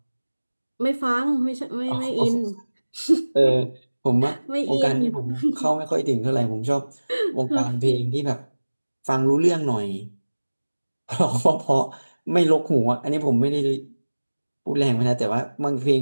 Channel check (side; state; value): both; inverted; correlation -1.00